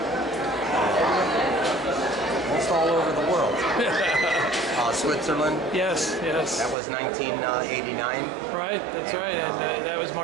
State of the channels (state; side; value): drops out; left; at 6.8 s